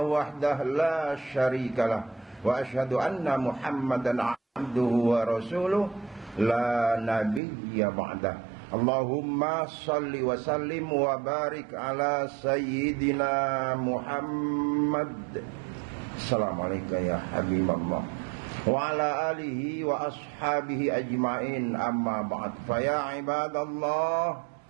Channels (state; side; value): drops out; left; at 7.4 s